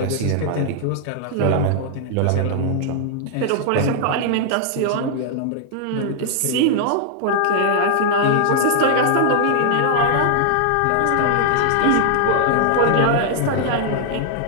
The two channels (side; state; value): both; different; correlation -0.01